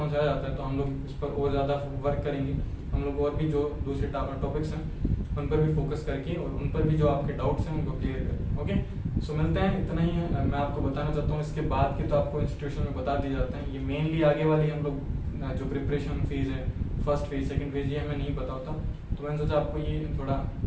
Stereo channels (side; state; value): both; identical; correlation 1.00